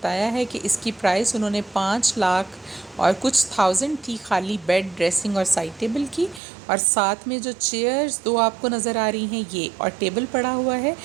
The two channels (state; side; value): drops out; left; at 6.4 s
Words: ہے کہ اس کی پرائس انہوں نے 5 لاکھ اور کچھ تھاؤزنڈ تھی خالی بیڈ، ڈریسنگ اور سائڈ ٹیبل کی. اور ساتھ میں جو چیئرز دو آپ کو نظر آ رہی ہیں یہ اور ٹیبل پڑا ہوا ہے،